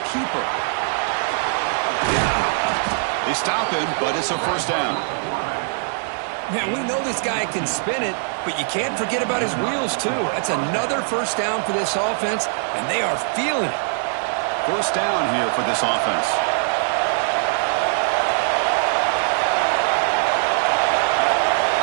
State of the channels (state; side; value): silent; left; digital silence